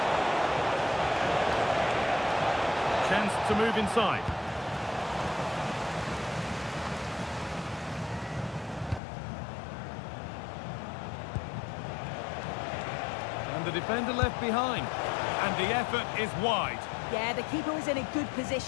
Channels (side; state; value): right; drops out; at 9.0 s